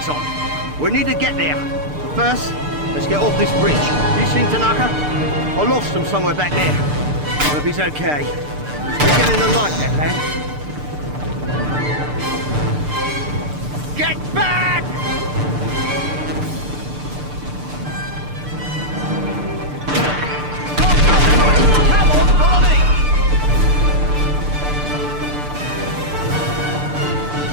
on. We need to get there. But first, let's get off this bridge. You seen Tanaka? I lost him somewhere back there. I hope he's okay. He's beginning to like that lad. Get back!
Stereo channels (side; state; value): left; late; 6.7 ms